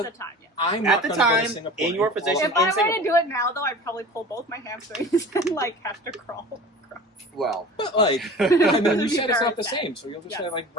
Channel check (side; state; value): both; normal; correlation 0.39